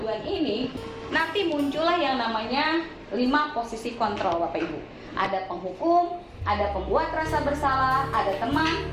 ini nanti muncullah yang namanya 5 posisi kontrol Bapak Ibu. Ada penghukum, ada pembuat rasa bersalah, ada teman,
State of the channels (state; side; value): identical; both; correlation 1.00